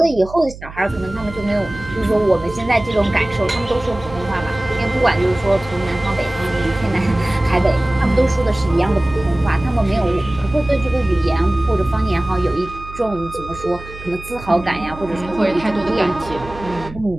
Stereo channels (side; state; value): right; noise; hum, 15 dB below the sound